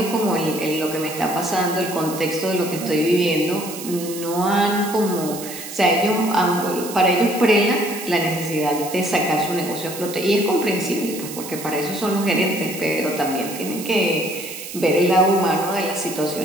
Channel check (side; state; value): right; noise; hiss, 11 dB below the sound